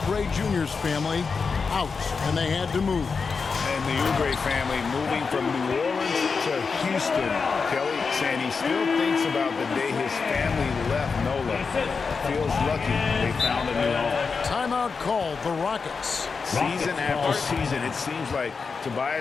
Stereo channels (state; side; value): quieter; right; 5.0 dB